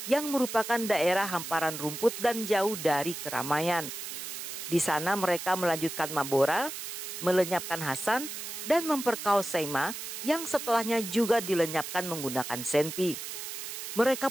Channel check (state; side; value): noise; right; hiss, 7 dB below the sound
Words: yang merupakan daerah hamparan rumput dan jauh dari keramaian. Di sana mereka melanjutkan mabora, melenyapkan Hasan, dan memperkaos Seima yang setelahnya juga dilenyapkan menggunakan senpi. Mereka